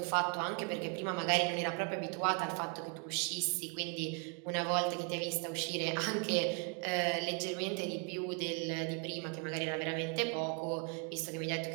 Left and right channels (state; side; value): quieter; left; 36.2 dB